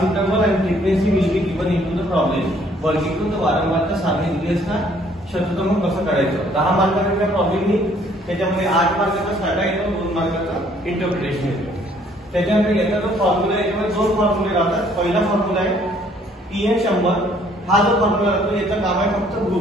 interval and frequency will be given into the problem. वर्गीकृत वारंवारता सारणी दिली असता शतक्रम कसं काढायचं. 10 मार्काचा प्रॉब्लेम येईल, त्याच्यामध्ये 8 मार्काचा स्टार्ट येतो, 2 मार्काचा इंटरप्रिटेशन येतो. त्याच्यानंतर याचा जो फॉर्म्युला आहे त्यामध्ये 2 फॉर्म्युले राहतात. पहिला फॉर्म्युला आहे पीएन 100. हा जो फॉर्म्युला असतो याचं काम आहे फक्त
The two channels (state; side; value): normal; both; correlation 0.62